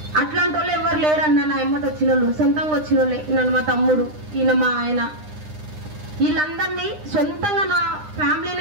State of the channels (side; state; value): left; late; 9.8 ms